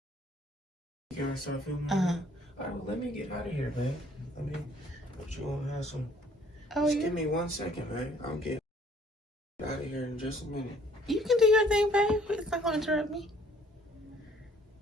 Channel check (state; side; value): normal; both; correlation 0.59